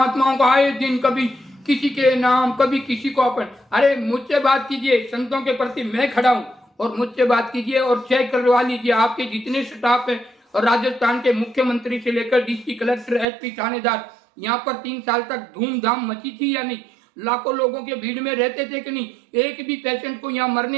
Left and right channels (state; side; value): drops out; left; at 13.2 s